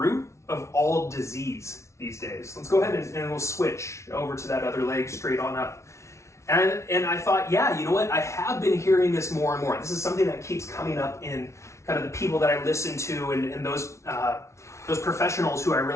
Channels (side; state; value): right; late; 0.13 ms